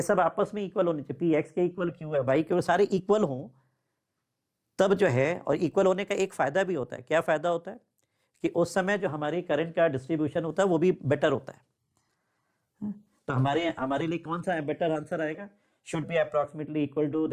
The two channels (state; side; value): identical; both; correlation 1.00